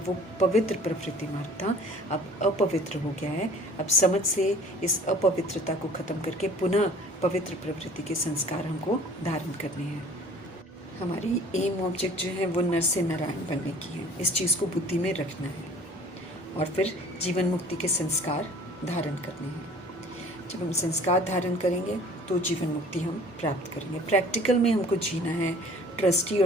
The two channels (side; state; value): both; normal; correlation 0.50